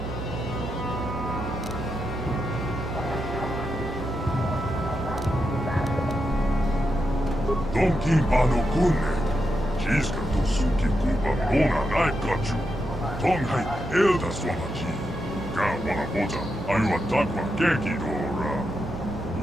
Donkin pano kunne, jiska to suki kupa nona naikachu, tonghai elda swamaji, ka wana boja, aywa takwa genki dora,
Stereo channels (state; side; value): normal; both; correlation 0.85